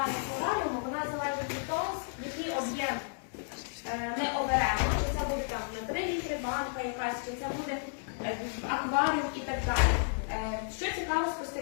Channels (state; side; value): silent; right; digital silence